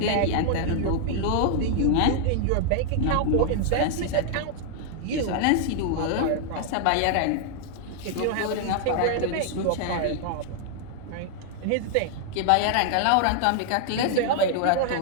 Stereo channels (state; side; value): different; both; correlation 0.00